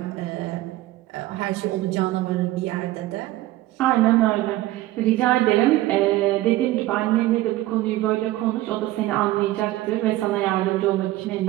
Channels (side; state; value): left; quieter; 16.5 dB